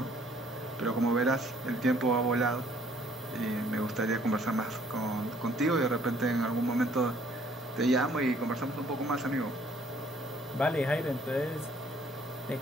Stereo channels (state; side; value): normal; both; correlation 0.61